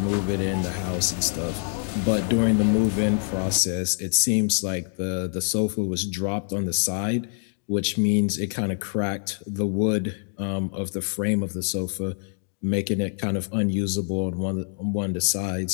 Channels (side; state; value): right; silent; 56 dB below the other